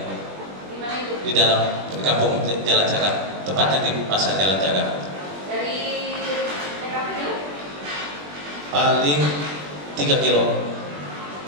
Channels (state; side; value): late; left; 21 ms